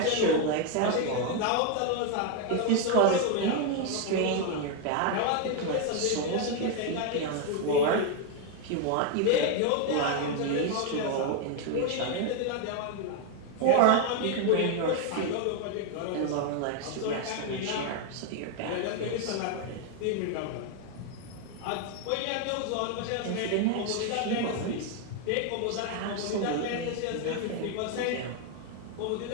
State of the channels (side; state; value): both; different; correlation 0.01